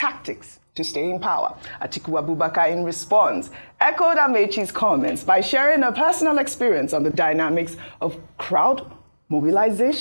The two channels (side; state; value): both; inverted; correlation -1.00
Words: to stay in power. Atiku Abubakar, in response, echoed Amechi's comments by sharing a personal experience on the dynamics of crowd